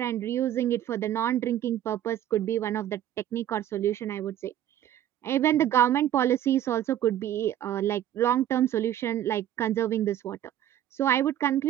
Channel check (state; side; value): quieter; left; 11.6 dB